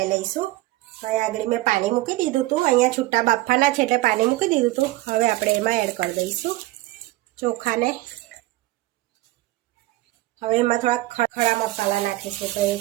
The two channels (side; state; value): left; quieter; 18.2 dB